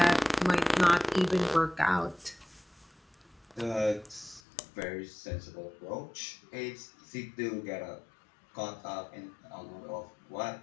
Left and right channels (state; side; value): drops out; right; at 4.4 s